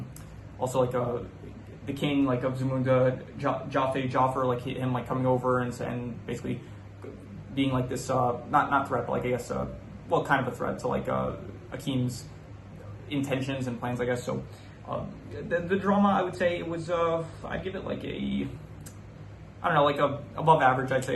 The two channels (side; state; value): both; identical; correlation 1.00